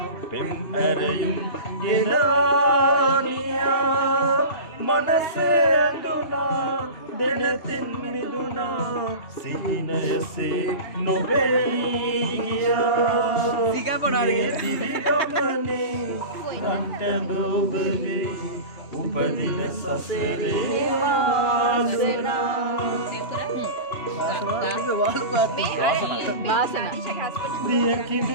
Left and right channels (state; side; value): late; right; 2.9 ms